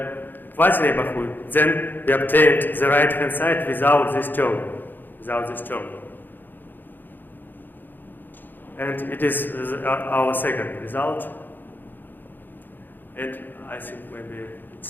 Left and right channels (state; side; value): late; right; 0.091 ms